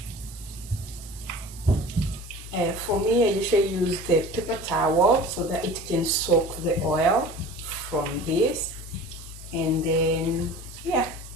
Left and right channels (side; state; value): both; normal; correlation 0.39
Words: For me, I usually use the paper towel so that it can soak the oil from this, and then yeah,